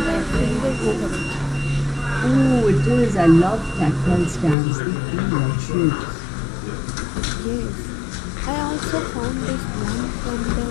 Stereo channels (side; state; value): right; drops out; at 4.5 s